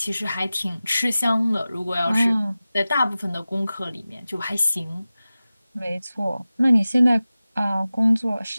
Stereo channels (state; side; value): inverted; both; correlation -0.96